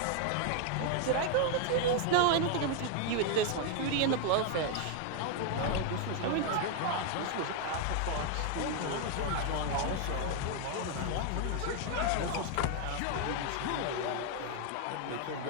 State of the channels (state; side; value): different; both; correlation 0.00